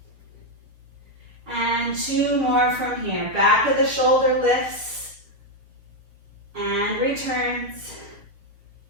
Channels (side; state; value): left; late; 6.7 ms